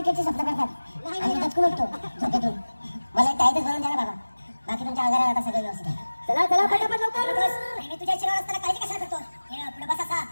स्वप्न करतात आणि दचकून उठतो झोपेतून. मला एक टाईटच भरून द्या ना बाबा. बाकी तुमच्या आजारात आता सगळं व्यवस्थित आहे. चला चला पटापट लवकर बस. मी तुझ्या शिरावर असताना काळजी कशाला करतो. पुढे बस असा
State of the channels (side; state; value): both; inverted; correlation -1.00